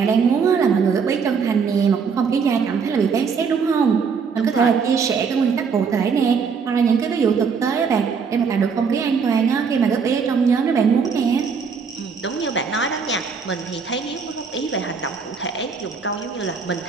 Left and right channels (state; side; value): quieter; left; 5.8 dB